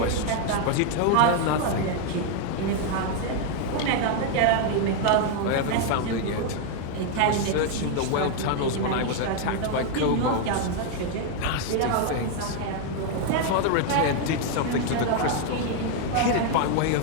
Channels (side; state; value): both; different; correlation 0.01